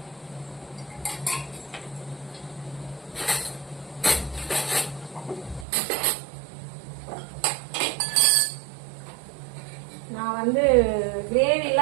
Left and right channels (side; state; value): left; drops out; at 5.7 s